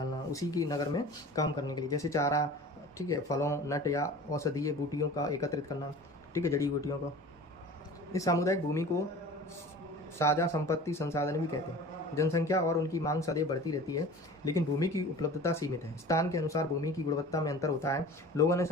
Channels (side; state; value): both; normal; correlation 0.40